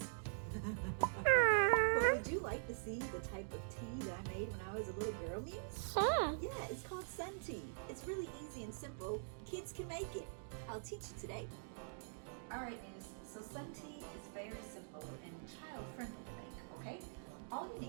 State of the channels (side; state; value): left; silent; digital silence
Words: But would you like to see the type of tea that I made when I was a little girl, Muse? Sure. Yeah, it's called sun tea. It's really easy and simple. Kids can make it. I'll teach you today. Alright, Muse. So sun tea is very simple and child-friendly to make, okay? All you